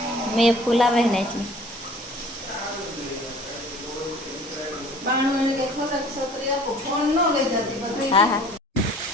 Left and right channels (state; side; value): normal; both; correlation 0.49